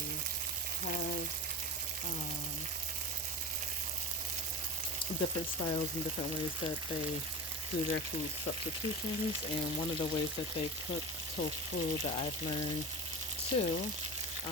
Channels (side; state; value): right; noise; hum, 28 dB below the sound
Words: have different styles and different ways that they do their food substitutions. And one of the ways that they cook tofu that I've learned too